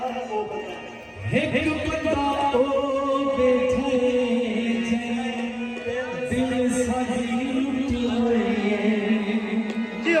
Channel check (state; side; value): identical; both; correlation 1.00